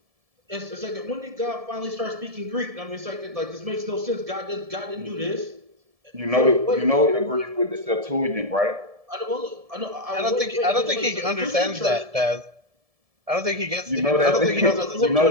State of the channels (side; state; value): left; late; 1.7 ms